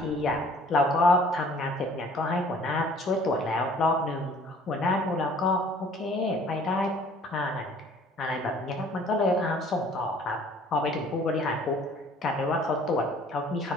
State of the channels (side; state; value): both; normal; correlation 0.54